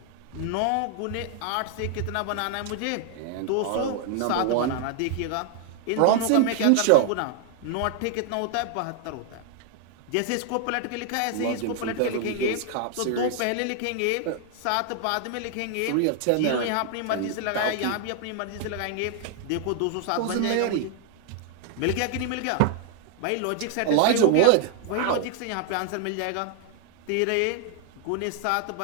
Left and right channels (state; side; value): different; both; correlation 0.00